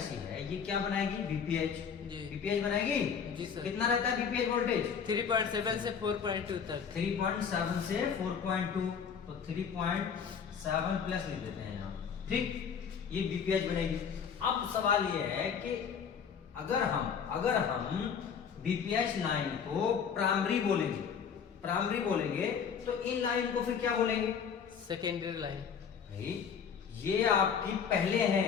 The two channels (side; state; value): right; quieter; 6.9 dB